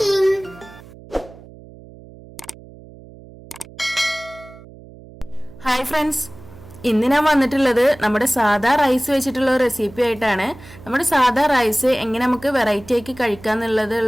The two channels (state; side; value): noise; right; hum, 20 dB below the sound